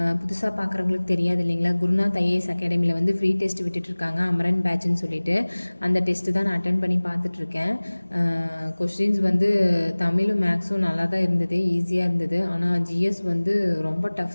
புதுசாக பார்க்குறவங்களுக்கு தெரியாது இல்லைங்களா, குருநாத் ஐஏஎஸ் அகாடமியில் வந்து ஃப்ரீ டெஸ்ட் விட்டுட்ருக்காங்க, அமரன் பேட்ச்னு சொல்லிட்டு. அந்த டெஸ்ட்டு தான் நான் அட்டன் பண்ணி பார்த்துட்ருக்கேன். கொஷின்ஸ் வந்து தமிழும் மேக்ஸும் நல்லா தான் இருந்தது, ஈஸியாக இருந்தது. ஆனால் ஜிஎஸ் வந்து ரொம்ப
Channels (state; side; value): inverted; both; correlation -1.00